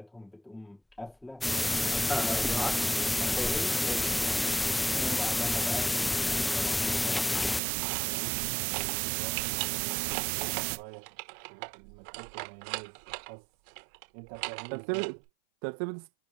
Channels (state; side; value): drops out; left; at 7.6 s